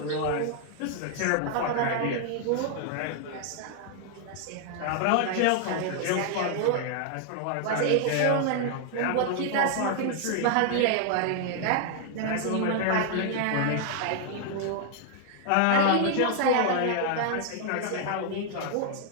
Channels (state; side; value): different; both; correlation 0.00